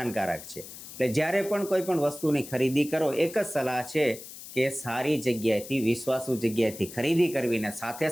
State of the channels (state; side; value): noise; left; hiss, 14 dB below the sound